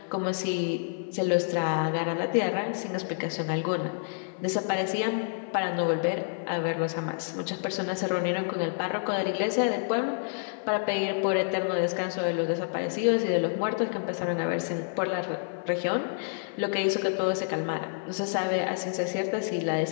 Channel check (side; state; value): right; silent; 59 dB below the other